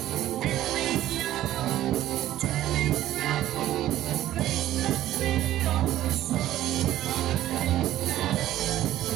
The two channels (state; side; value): quieter; left; 13.5 dB